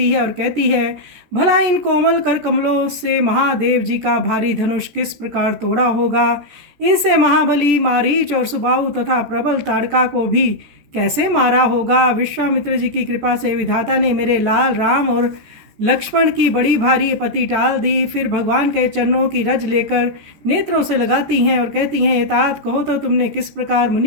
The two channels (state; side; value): late; left; 14 ms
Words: है और कहती है, भला इन कोमल कर कमलों से महादेव जी का भारी धनुष किस प्रकार तोड़ा होगा। इनसे महाबली मारीच और सुबाहु तथा प्रबल ताड़का को भी कैसे मारा होगा। विश्वामित्र जी की कृपा से विधाता ने मेरे लाल राम और लक्ष्मण की बड़ी भारी पति टाल दी। फिर भगवान के चरणों की रज लेकर नेत्रों से लगाती हैं और कहती हैं, तात कहो तो तुमने किस प्रकार